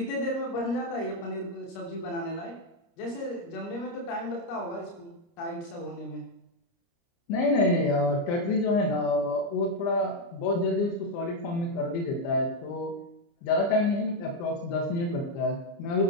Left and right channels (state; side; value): late; right; 29 ms